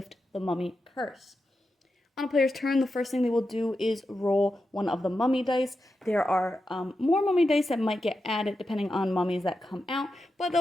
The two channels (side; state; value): both; normal; correlation 0.89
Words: the mummy curse. On a player's turn, the first thing they will do is roll one of the mummy dice. There are more mummy dice that might get added depending on mummies that come out, but